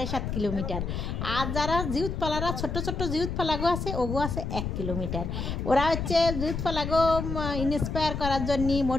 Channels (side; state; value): left; noise; rumble, 3 dB below the sound